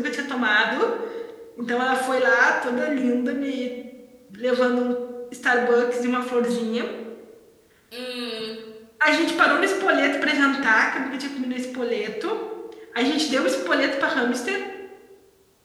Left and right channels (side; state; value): both; identical; correlation 1.00